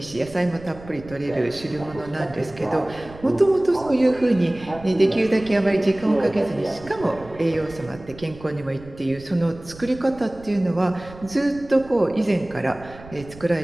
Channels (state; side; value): noise; right; rumble, 18 dB below the sound